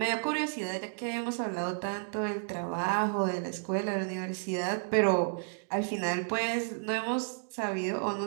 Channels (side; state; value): left; silent; digital silence